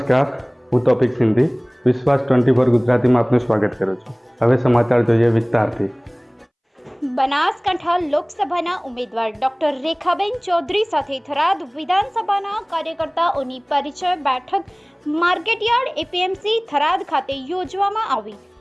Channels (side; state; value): both; identical; correlation 1.00